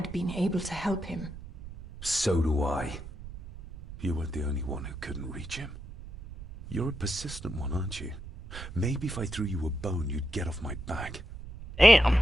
been able to help him. So do I. You weren't the only one who couldn't reach him. You're a persistent one, aren't you? Maybe if I threw you a bone, you'd get off my back. Damn.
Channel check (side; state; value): right; noise; rumble, 13 dB below the sound